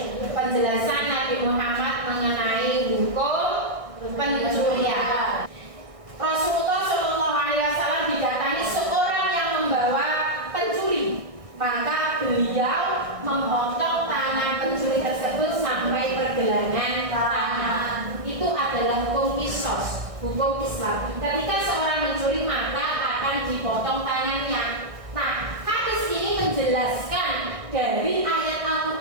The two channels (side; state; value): left; late; 1.6 ms